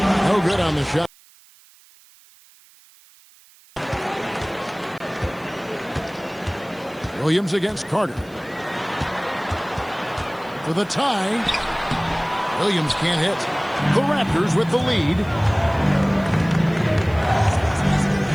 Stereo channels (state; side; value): noise; right; hiss, 27 dB below the sound